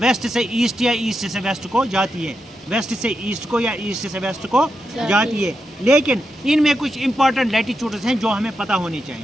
से ईस्ट या ईस्ट से वेस्ट को जाती है, वेस्ट से ईस्ट को या ईस्ट से वेस्ट को जाती है। लेकिन इनमें कुछ इंपॉर्टेंट लैटिट्यूड्स हैं जो हमें पता होने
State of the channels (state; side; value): normal; both; correlation 0.86